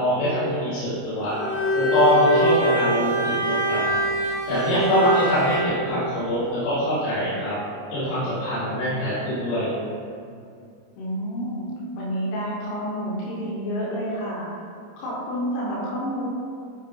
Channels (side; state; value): right; late; 29 ms